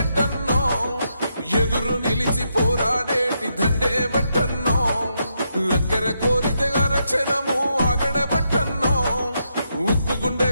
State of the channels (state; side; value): inverted; both; correlation -0.81